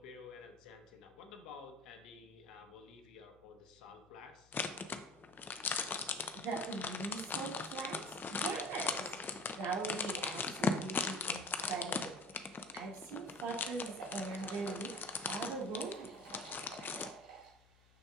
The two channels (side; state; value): left; noise; hum, 28 dB below the sound